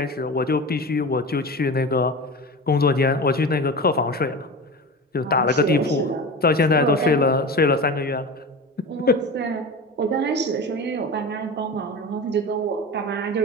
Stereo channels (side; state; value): both; normal; correlation 0.29